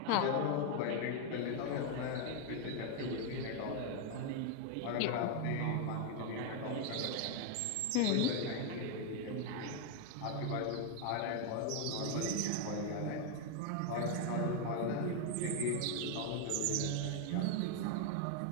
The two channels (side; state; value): both; different; correlation 0.01